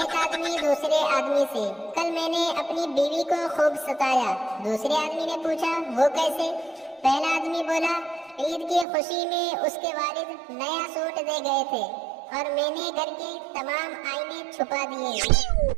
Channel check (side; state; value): left; drops out; at 8.8 s